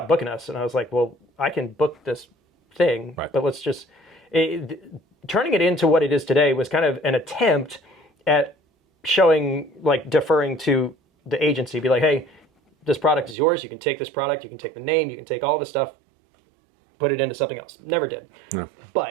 booking us, and I was like, well, I can book this thing, but let's just turning it into what it is today was kind of an attempt at showing, like, deferring to the agency, be like, hey, this product is yours. You can take this product. You can take the name. You can take all the stuff, put it into something else. Never did. No.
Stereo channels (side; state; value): left; drops out; at 13.4 s